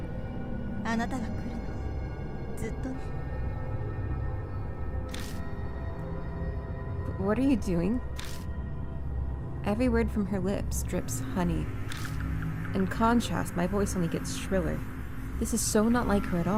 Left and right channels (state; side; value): identical; both; correlation 1.00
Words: た。あなたが来るの。ずっとね。 What are you doing? Every word from her lips drips honey. In contrast, my voice only gets shriller. This is so not like her at